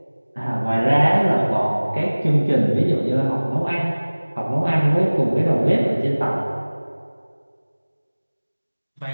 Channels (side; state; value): both; inverted; correlation -1.00